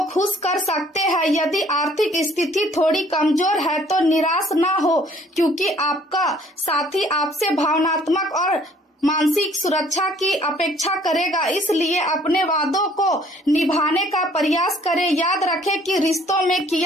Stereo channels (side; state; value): both; normal; correlation 0.59